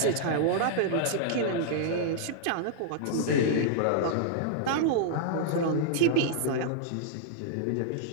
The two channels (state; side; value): different; both; correlation -0.01